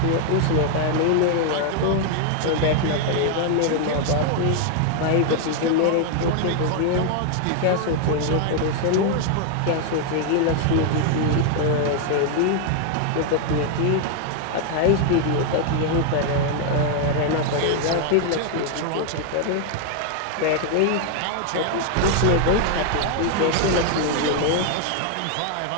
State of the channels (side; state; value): both; different; correlation 0.00